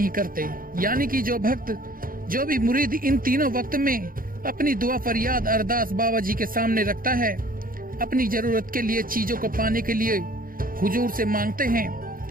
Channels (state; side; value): late; left; 0.41 ms